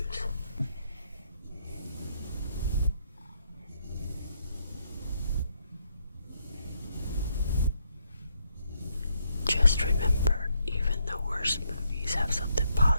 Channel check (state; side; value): inverted; both; correlation -0.76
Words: Just remember, even the worst movies have something